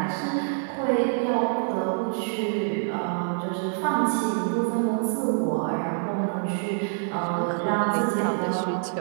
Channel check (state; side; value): silent; left; digital silence